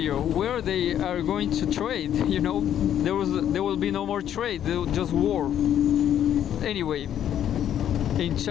where they are going to trade? You know, there will be no more trade, just war. Anyway, in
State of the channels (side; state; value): right; quieter; 10.3 dB